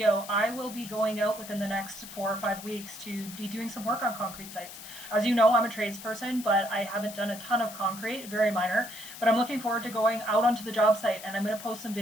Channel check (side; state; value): left; noise; hiss, 13 dB below the sound